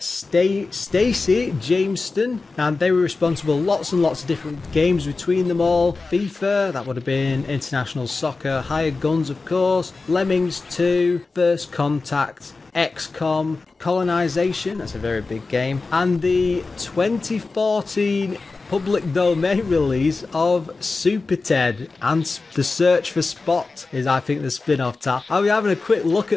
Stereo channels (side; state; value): right; quieter; 3.9 dB